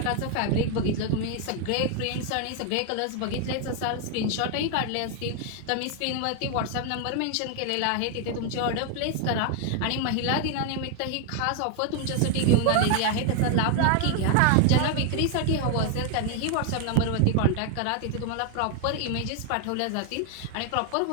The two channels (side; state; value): both; different; correlation 0.00